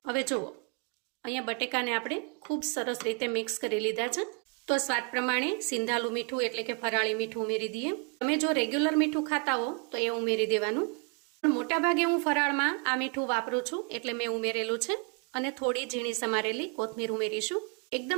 હવે જુઓ, અહીંયા બટેકાને આપણે ખૂબ સરસ રીતે મિક્સ કરી લીધા છે. તો સ્વાદ પ્રમાણે સિંધાલું મીઠું એટલે કે ફરાળી મીઠું ઉમેરી દઈએ. તમે જો રેગ્યુલર મીઠું ખાતા હો તો એ ઉમેરી દેવાનું, પણ મોટા ભાગે હું ફરાળમાં આ મીઠું વાપરું છું એટલે મેં ઉમેરેલું છે. અને થોડી ઝીણી સમારેલી કોથમીર ઉમેરીશું.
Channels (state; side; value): quieter; left; 37.0 dB